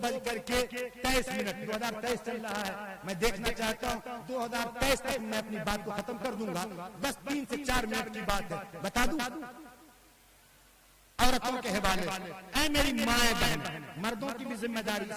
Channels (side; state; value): both; identical; correlation 1.00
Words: 2023 چل رہا ہے، میں دیکھنا چاہتا ہوں 2023 تک میں اپنی بات کو ختم کر دوں گا۔ بس 3 سے 4 منٹ کی بات ہے، بتا دوں عورتوں کے حوالے سے۔ اے میری مائیں بہن، مردوں کی بھی ذمہ داری،